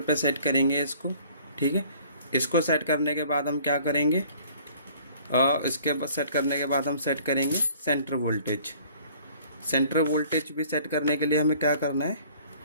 पे सेट करेंगे इसको। ठीक है, इसको सेट करने के बाद हम क्या करेंगे, इसके बाद सेट करने के बाद हम सेट करेंगे सेंटर वोल्टेज। सेंटर वोल्टेज भी सेट करने के लिए हमें क्या करना है,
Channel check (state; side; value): inverted; both; correlation -0.54